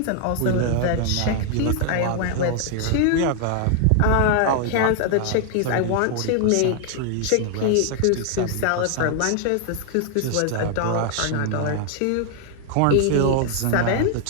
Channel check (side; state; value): both; different; correlation 0.00